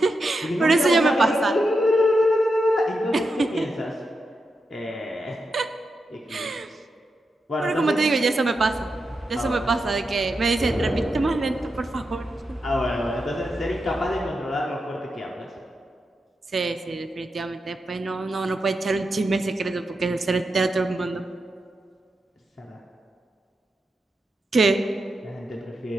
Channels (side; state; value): both; normal; correlation 0.87